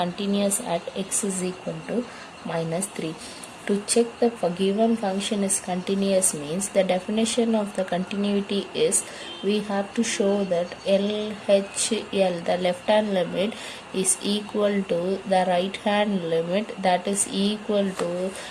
at x is equal to minus 3. To check the given function is continuous means the definition of the continuity is we have to show that LHL, the left hand limit, is equal to the right hand limit, that is equal to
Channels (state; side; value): identical; both; correlation 1.00